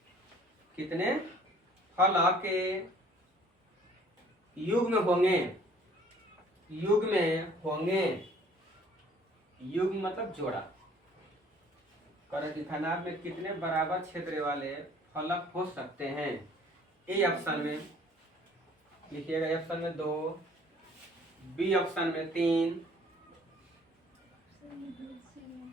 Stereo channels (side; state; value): both; normal; correlation 0.55